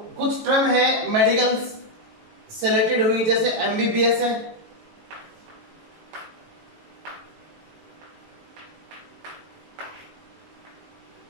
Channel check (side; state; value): left; late; 18 ms